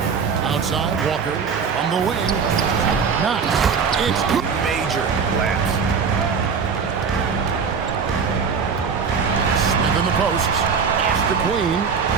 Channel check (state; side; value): quieter; left; 5.9 dB